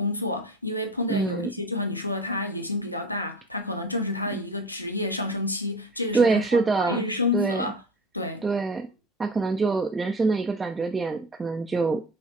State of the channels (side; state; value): both; normal; correlation 0.34